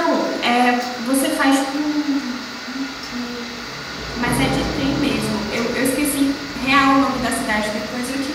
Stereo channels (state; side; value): identical; both; correlation 1.00